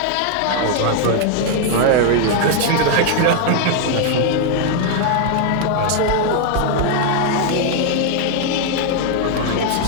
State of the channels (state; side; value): different; both; correlation 0.00